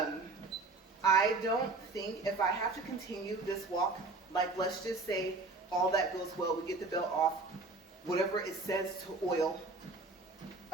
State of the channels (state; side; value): quieter; left; 3.5 dB